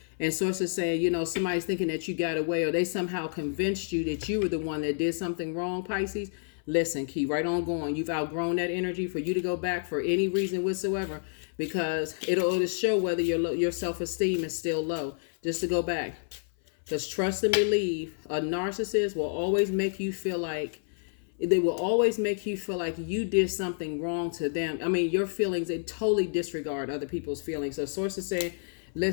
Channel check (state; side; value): silent; right; 57 dB below the other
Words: And sources saying, somebody's thinking that you got away, or they somehow convinced you that you were the one that did something wrong, Pisces. Listen, keep right on going. You've outgrown that energy for you to go back for any reason whatsoever, because it'll show whether your self-esteem is still low. Just to go back. Because trust and believe, a narcissist will always make you feel like you did something wrong to them. Your feelings, they totally disregard other people's feelings. So sources say,